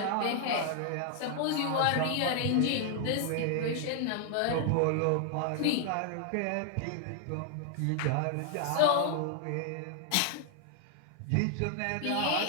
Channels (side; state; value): both; different; correlation 0.00